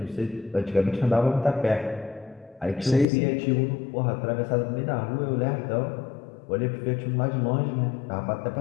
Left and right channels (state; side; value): drops out; right; at 3.1 s